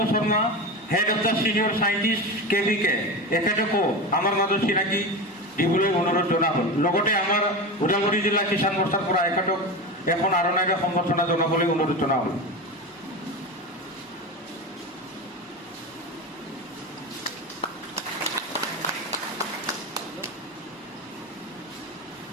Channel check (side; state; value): both; normal; correlation 0.23